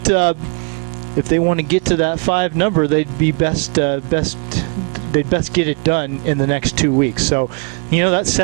if they want to get to that 5 number, they'd be best get it done in the next 2 weeks. So, that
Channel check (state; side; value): quieter; left; 35.3 dB